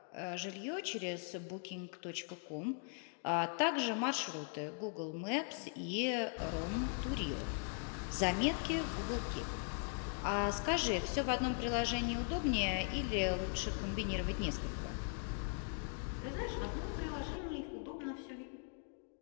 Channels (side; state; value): right; silent; 51 dB below the other